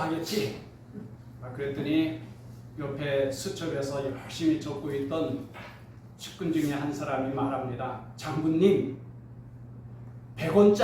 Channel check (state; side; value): identical; both; correlation 1.00